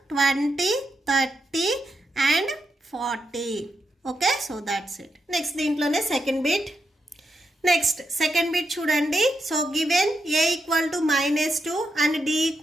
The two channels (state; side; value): normal; both; correlation 0.84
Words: 20, 30 and 40. Okay, so that's it. Next దీంట్లోనే second bit. Next second bit చూడండి. So given A equal to -2 and D